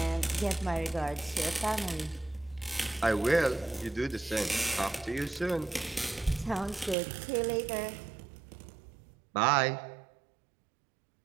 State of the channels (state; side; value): drops out; left; at 7.0 s